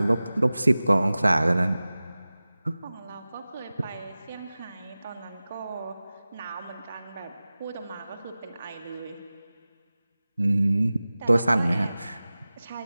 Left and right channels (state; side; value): inverted; both; correlation -0.97